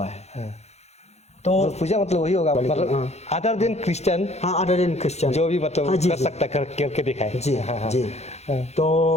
है। तो पूजा मतलब वही होगा, मतलब other than Christian, other than Christian जो भी मतलब कर सकता करके दिखाए जी। जी तो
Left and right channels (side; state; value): right; late; 0.31 ms